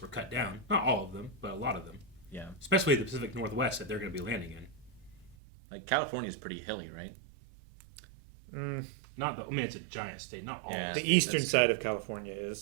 were cut down. Not all of them, but a lot of them. Yeah. Especially the Pacific Northwest that they're going to be landing in. Like California's pretty hilly, right? Not the. I mean, it's a giant state. Not all. Yeah. of The the eastern side of California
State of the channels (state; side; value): drops out; left; at 5.4 s